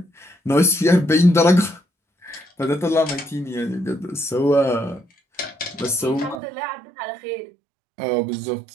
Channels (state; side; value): drops out; left; at 6.4 s